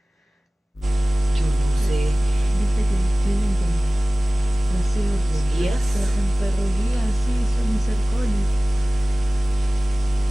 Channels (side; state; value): both; normal; correlation 0.97